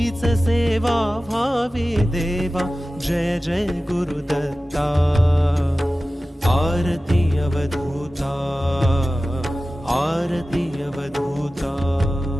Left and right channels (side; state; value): both; normal; correlation 0.96